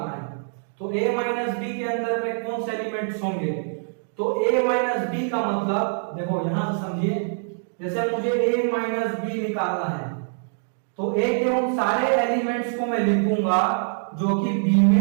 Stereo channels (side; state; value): left; silent; digital silence